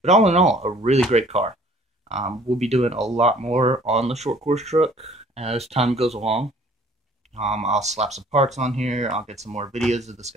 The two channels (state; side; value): normal; both; correlation 0.54